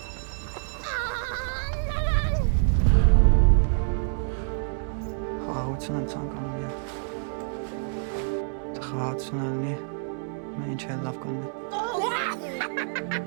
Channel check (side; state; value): left; silent; digital silence